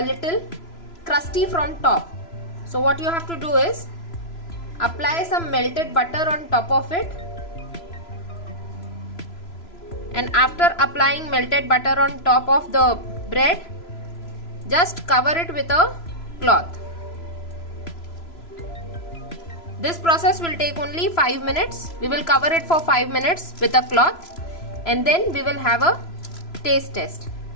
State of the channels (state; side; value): late; right; 3.0 ms